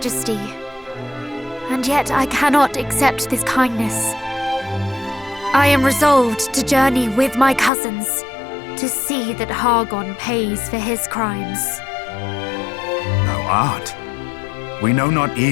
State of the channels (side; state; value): right; drops out; at 7.7 s